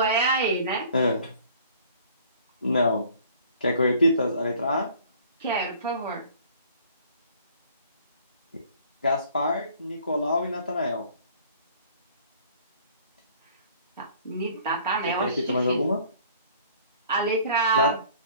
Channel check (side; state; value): both; inverted; correlation -0.53